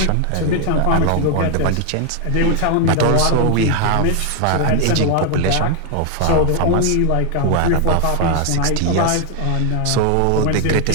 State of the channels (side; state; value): both; different; correlation 0.00